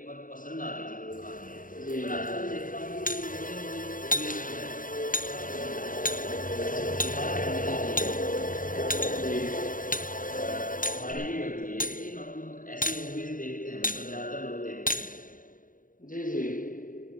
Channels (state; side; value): late; right; 0.39 ms